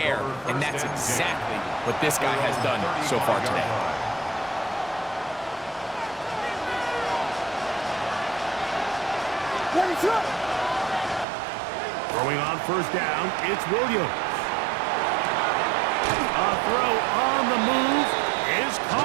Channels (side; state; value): left; drops out; at 11.2 s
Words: And that's exactly what this guy has done so far today. Throwing on first down, it's Williams. A throw on the move is